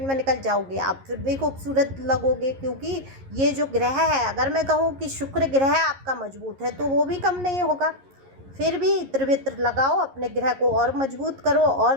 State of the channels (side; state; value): left; late; 11 ms